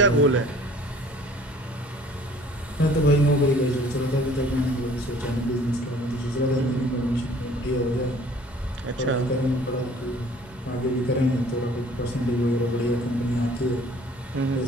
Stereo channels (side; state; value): both; normal; correlation 0.53